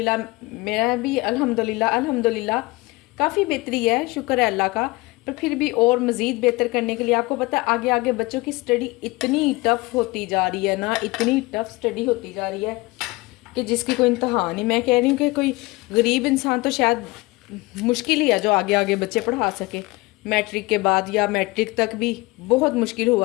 मेरा भी अल्हम्दुलिल्लाह काफ़ी बेहतरी है, शुक्र है अल्लाह का। पर फिर भी और मज़ीद बेहतर करने के लिए आपको पता है आगे आगे बच्चों की स्टडी इतनी टफ़ होती जा रही है ना, इतनी टफ़ स्टडी होती जा रही है कि जिसकी कोई इंतहा नहीं। मैं कह रही हूँ कि कोई गरीब इंसान तो शायद मुश्किल ही है जो आगे आगे बच्चे पढ़ा सके। मैट्रिक के बाद या मैट्रिक तक भी बहुत मुश्किल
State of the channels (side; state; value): right; quieter; 22.8 dB